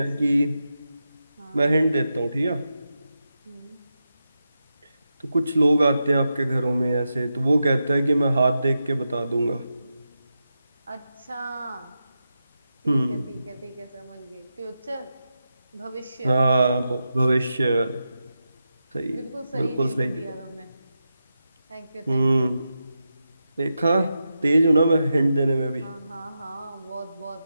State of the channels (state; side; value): inverted; both; correlation -0.89